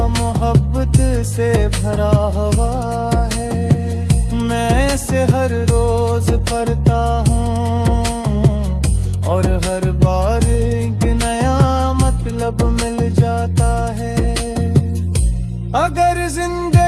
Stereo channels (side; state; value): both; identical; correlation 1.00